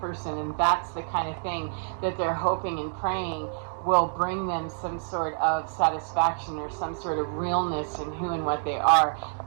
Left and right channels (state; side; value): silent; left; digital silence